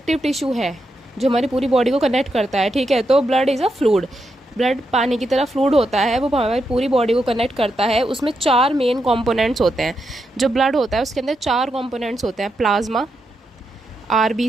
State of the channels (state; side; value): normal; both; correlation 0.84